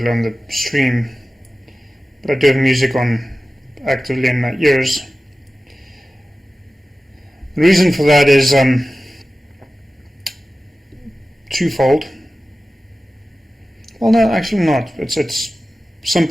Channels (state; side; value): normal; both; correlation 0.96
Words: on the stream, but I do have music on actively in my ears. The reason for that is twofold. Well, no, actually not. It's